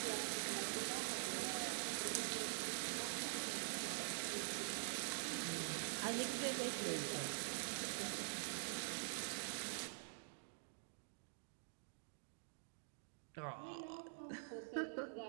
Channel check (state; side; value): silent; left; digital silence